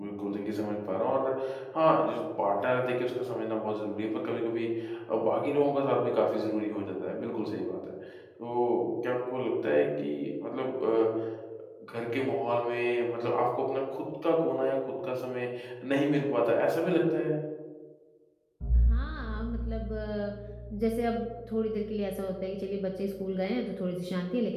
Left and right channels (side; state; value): both; identical; correlation 1.00